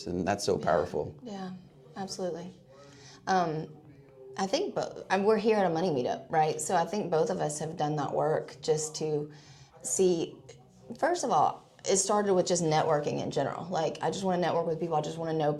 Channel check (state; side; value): identical; both; correlation 1.00